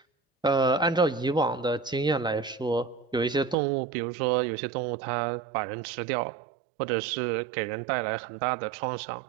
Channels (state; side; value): drops out; left; at 3.6 s